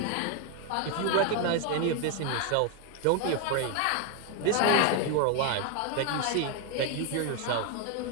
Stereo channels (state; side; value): different; both; correlation 0.01